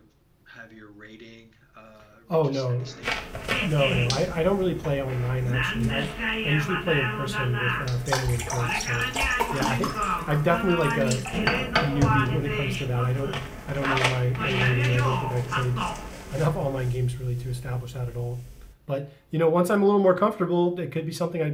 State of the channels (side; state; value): both; identical; correlation 1.00